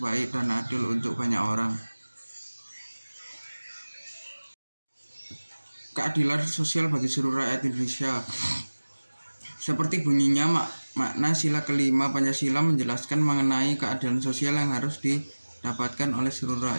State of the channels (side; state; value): both; inverted; correlation -1.00